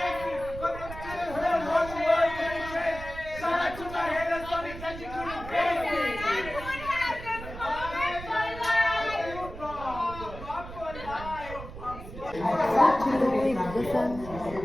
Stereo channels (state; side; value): noise; right; rumble, 12 dB below the sound